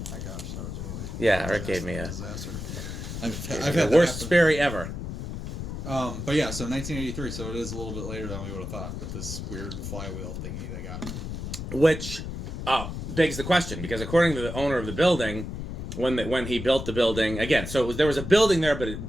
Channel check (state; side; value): noise; left; rumble, 7 dB below the sound